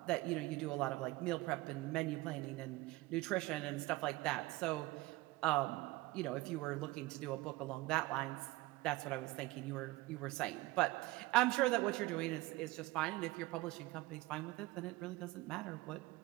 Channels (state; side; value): quieter; left; 20.2 dB